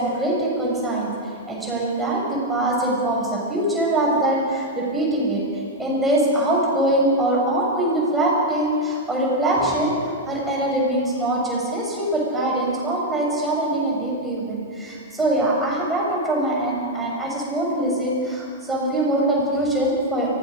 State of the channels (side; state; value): both; normal; correlation 0.03